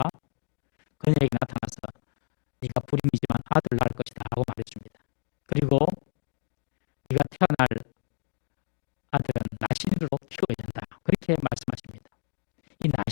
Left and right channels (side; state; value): right; silent; digital silence